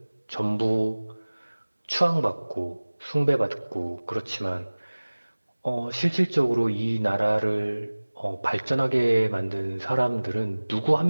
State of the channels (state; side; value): inverted; both; correlation -1.00